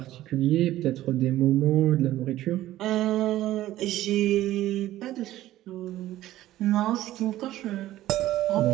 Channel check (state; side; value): quieter; left; 14.6 dB